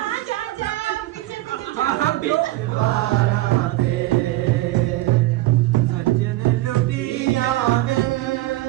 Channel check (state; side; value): quieter; left; 16.9 dB